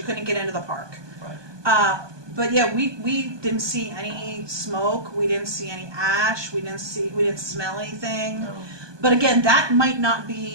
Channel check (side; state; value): left; late; 1.2 ms